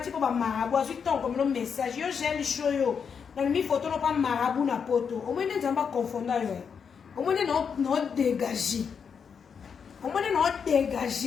po ba marabu azu ton comme le message yo gel show yo. Na mi photo no pa marabu na poto. O mo ne nzamba confondre yo. O mo ne no dégager. O mo ne no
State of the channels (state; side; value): quieter; right; 6.6 dB